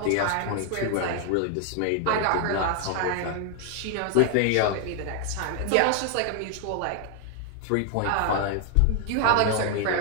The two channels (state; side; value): different; both; correlation 0.00